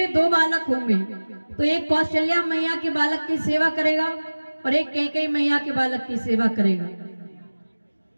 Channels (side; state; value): both; inverted; correlation -1.00